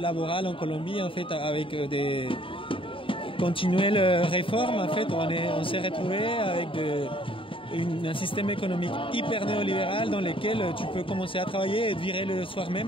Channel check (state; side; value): late; right; 0.25 ms